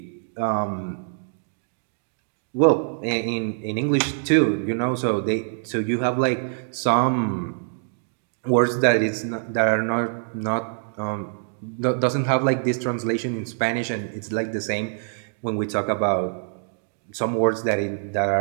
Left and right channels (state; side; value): silent; left; digital silence